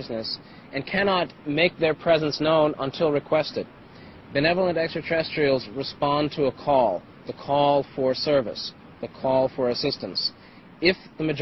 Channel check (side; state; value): both; identical; correlation 1.00